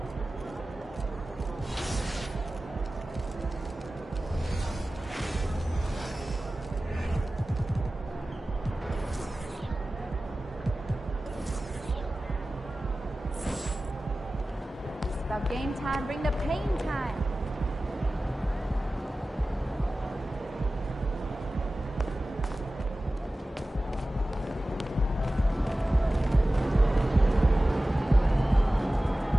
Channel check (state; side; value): normal; both; correlation 0.96